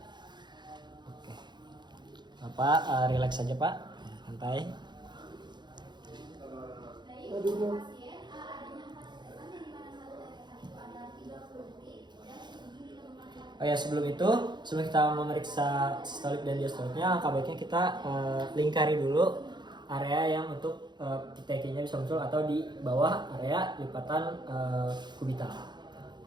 Oke, Bapak relax saja Pak, santai. Oh ya, sebelum kita memeriksa sistolik dan diastoliknya, langkah baiknya kita lingkari dulu area yang untuk PTK-nya bisa muncul atau di bawah area lipatan kubital.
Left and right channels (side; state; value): left; late; 0.21 ms